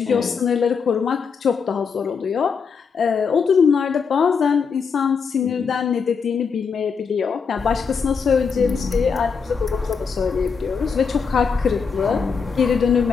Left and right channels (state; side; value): quieter; right; 5.8 dB